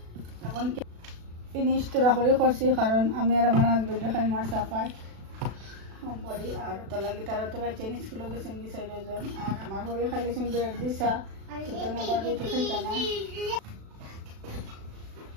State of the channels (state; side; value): late; left; 36 ms